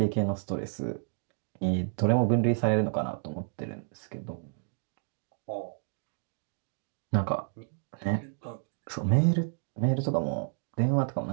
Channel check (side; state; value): left; silent; digital silence